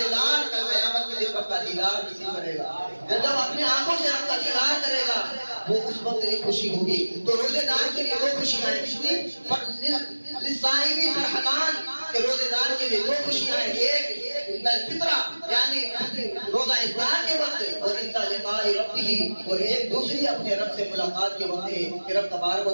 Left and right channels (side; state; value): both; inverted; correlation -1.00